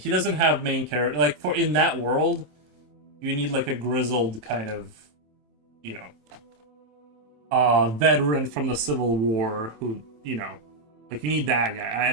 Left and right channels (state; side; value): late; left; 27 ms